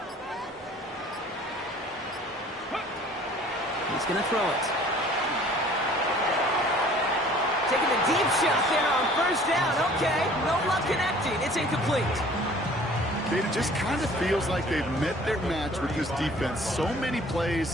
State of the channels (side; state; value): both; normal; correlation 0.51